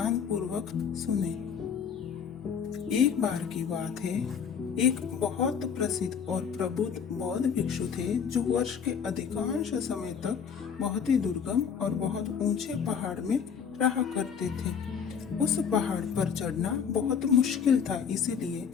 पूर्वक सुने। एक बार की बात है, एक बहुत प्रसिद्ध और प्रबुद्ध बौद्ध भिक्षु थे जो वर्ष के अधिकांश समय तक बहुत ही दुर्गम और बहुत ऊंचे पहाड़ में रहा करते थे। उस पहाड़ पर चढ़ना बहुत मुश्किल था, इसीलिए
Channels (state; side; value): quieter; right; 7.0 dB